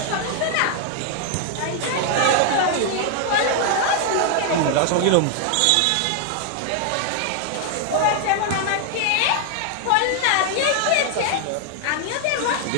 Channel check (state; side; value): different; both; correlation 0.00